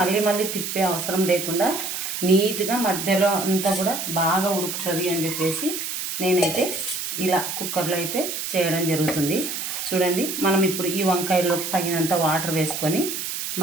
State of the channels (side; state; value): right; noise; hiss, 4 dB below the sound